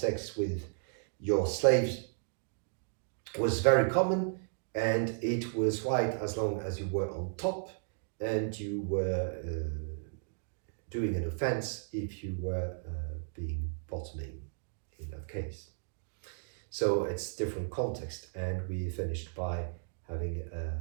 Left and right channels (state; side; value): silent; left; digital silence